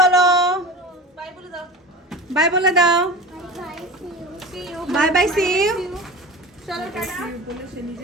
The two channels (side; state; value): both; normal; correlation 0.32